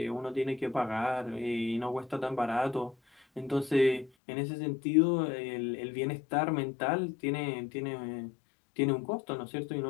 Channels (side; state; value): right; drops out; at 4.1 s